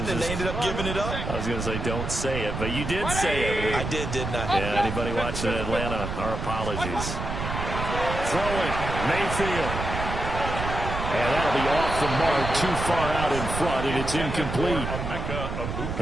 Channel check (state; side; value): noise; right; rumble, 4 dB below the sound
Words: and they ended up giving it up? I was going to say, don't say it, but you did say it. I did, didn't I? Yeah, anybody watching Atlanta, our apologies. Throwing, Mayfield. And that'll be off the mark, too far out in front, and it's incomplete.